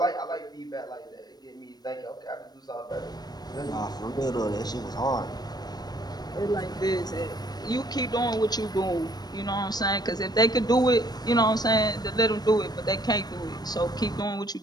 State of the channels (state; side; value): late; right; 0.19 ms